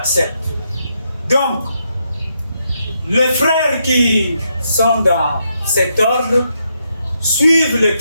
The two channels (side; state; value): both; inverted; correlation -0.79